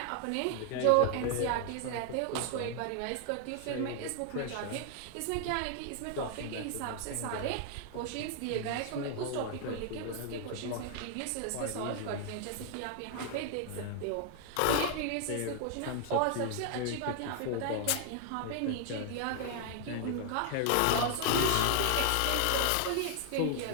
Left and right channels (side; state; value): both; different; correlation 0.00